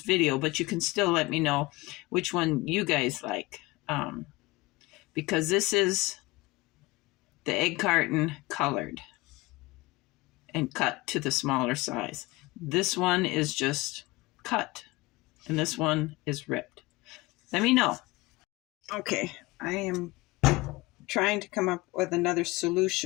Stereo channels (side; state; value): right; quieter; 21.8 dB